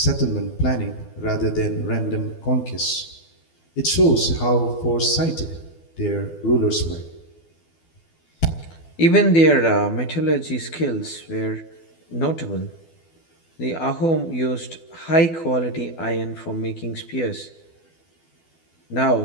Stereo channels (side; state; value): right; late; 12 ms